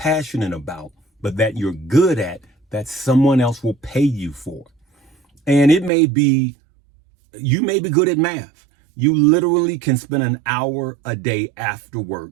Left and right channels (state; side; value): drops out; left; at 5.9 s